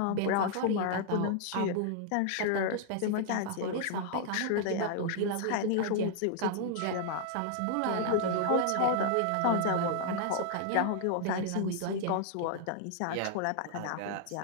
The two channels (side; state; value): both; different; correlation -0.01